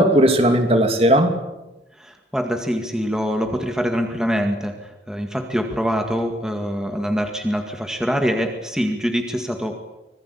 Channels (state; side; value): normal; both; correlation 0.68